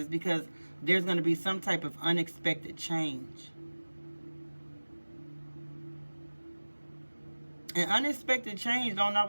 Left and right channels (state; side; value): inverted; both; correlation -1.00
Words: because there's going to be some type of unexpected change. And unexpected change don't